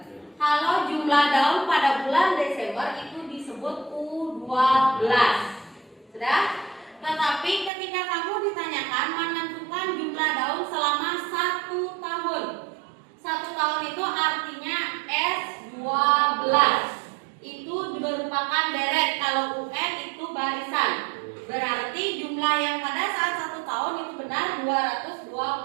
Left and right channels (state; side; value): drops out; left; at 7.7 s